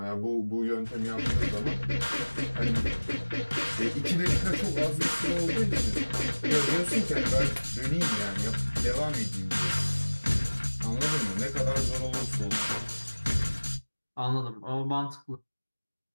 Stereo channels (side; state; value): both; inverted; correlation -1.00